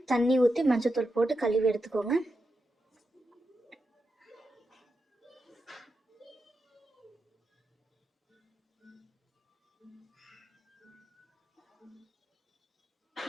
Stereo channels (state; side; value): normal; both; correlation 0.87